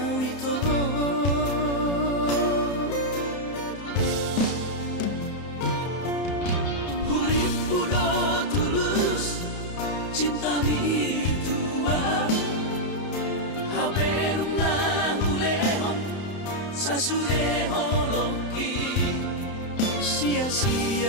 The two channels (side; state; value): right; late; 31 ms